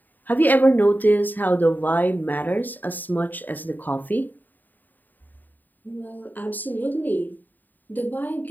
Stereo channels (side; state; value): right; late; 0.088 ms